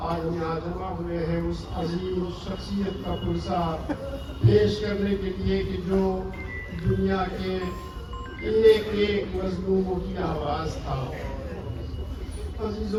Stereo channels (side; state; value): both; identical; correlation 1.00